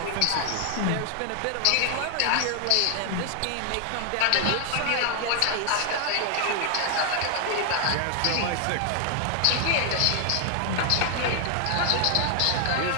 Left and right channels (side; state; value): both; different; correlation 0.00